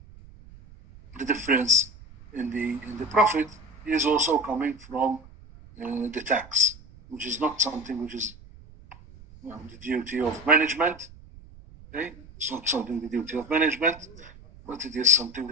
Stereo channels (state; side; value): noise; right; rumble, 20 dB below the sound